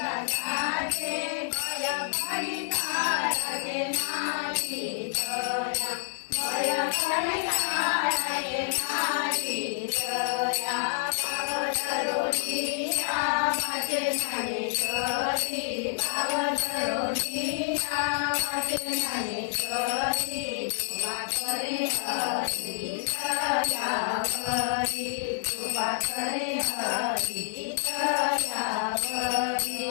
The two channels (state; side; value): silent; right; digital silence